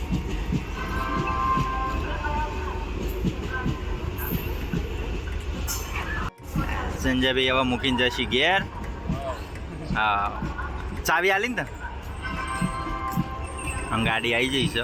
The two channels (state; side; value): identical; both; correlation 1.00